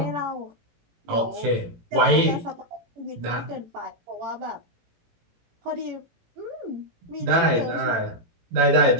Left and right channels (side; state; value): left; late; 18 ms